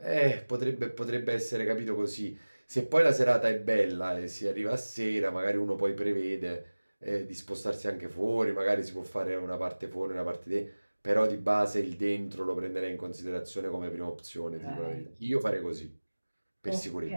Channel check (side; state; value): both; inverted; correlation -1.00